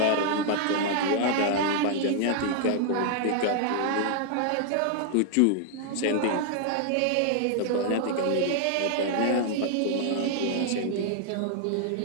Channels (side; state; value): both; different; correlation 0.00